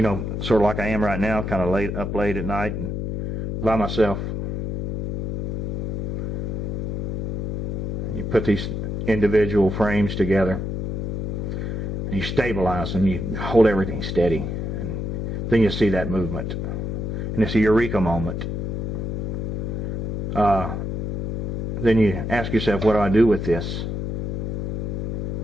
know, sort of like I am right now, kind of up late at night and by myself. You put these individual frames together, and you stabilize them, you hold everything steady, and then you see that movement. And it's a eureka moment. Then you ask yourself, what do I do with this?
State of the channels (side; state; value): left; noise; hum, 2 dB below the sound